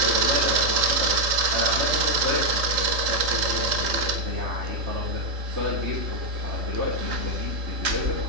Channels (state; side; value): late; left; 3.7 ms